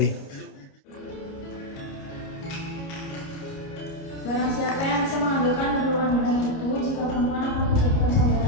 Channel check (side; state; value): right; late; 29 ms